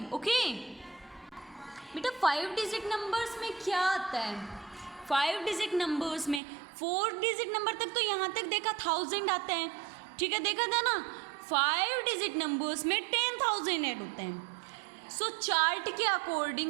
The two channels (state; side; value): drops out; left; at 6.4 s